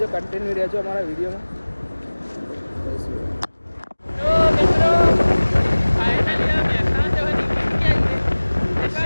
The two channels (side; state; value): both; inverted; correlation -1.00